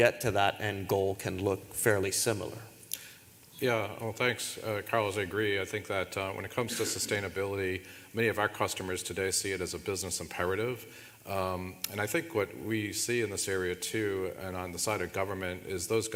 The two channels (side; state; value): both; identical; correlation 1.00